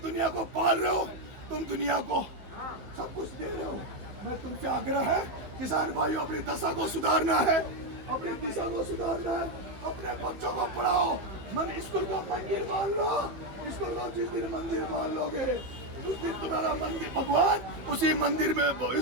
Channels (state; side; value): late; left; 15 ms